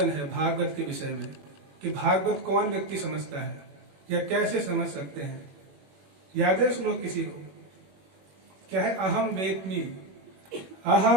है भागवत के विषय में? कि भागवत कौन व्यक्ति समझता है या कैसे समझ सकते हैं? याद है श्लोक किसी को? क्या है? अहम वेत्मि,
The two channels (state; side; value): late; left; 21 ms